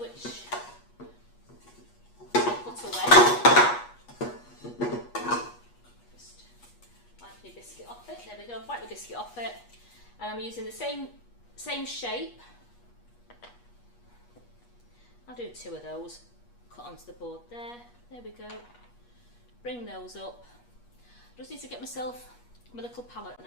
I put away. Just wipe the biscuit off it. There we go. Wipe the biscuit off it, and I'm using the same shape. I'll do 2 of those. Cut onto the board there. There we go. Bring those up. Just need to get myself my little palette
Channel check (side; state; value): right; late; 8.3 ms